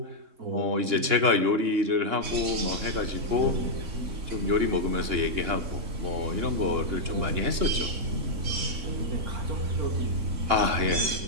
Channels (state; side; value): late; left; 2.9 ms